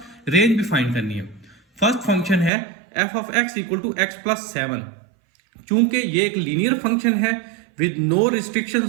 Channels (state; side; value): drops out; left; at 2.5 s